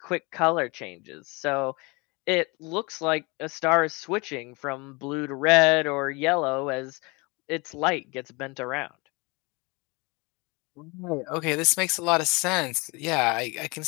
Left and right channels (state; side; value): quieter; right; 27.2 dB